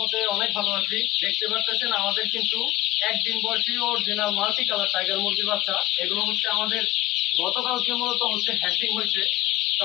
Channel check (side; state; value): right; quieter; 16.3 dB